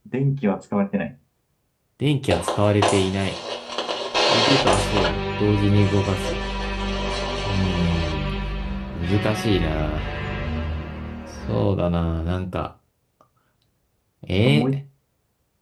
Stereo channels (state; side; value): identical; both; correlation 1.00